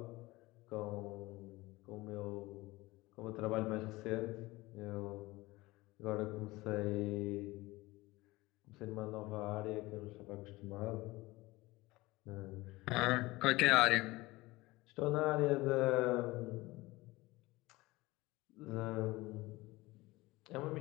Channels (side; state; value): right; quieter; 20.5 dB